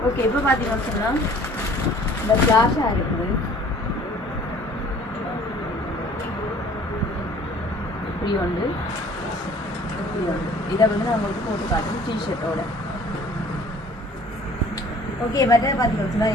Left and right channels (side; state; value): both; normal; correlation 0.52